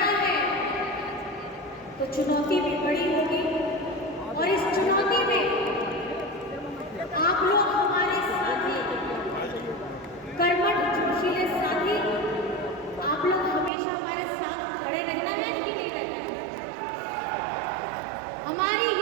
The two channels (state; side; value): drops out; left; at 13.7 s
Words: है तो चुनौती भी बड़ी होगी। और इस चुनौती में आप लोग हमारे साथी, कर्मठ जोशीले साथी, आप लोग हमेशा हमारे साथ खड़े रहना है कि नहीं रहना है? हमारी